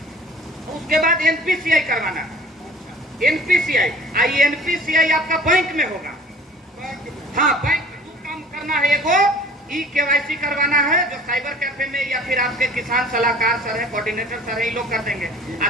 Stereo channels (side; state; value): both; normal; correlation 0.48